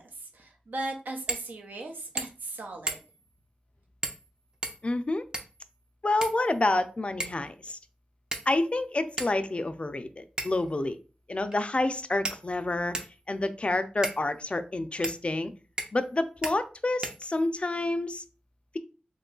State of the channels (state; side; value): normal; both; correlation 0.83